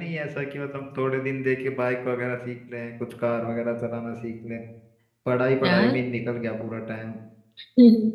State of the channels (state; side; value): identical; both; correlation 1.00